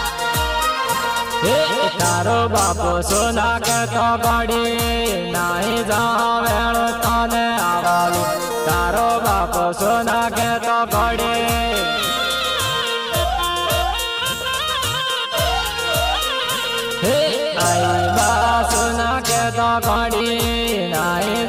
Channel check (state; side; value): identical; both; correlation 1.00